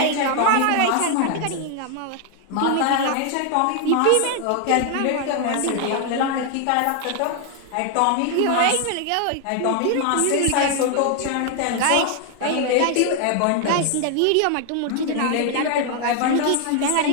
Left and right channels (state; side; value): different; both; correlation 0.00